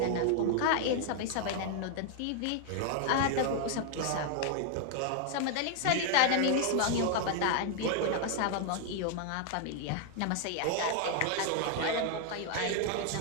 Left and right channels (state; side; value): different; both; correlation 0.00